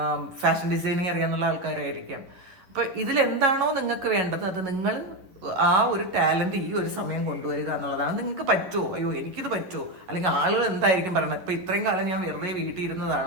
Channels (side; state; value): left; late; 11 ms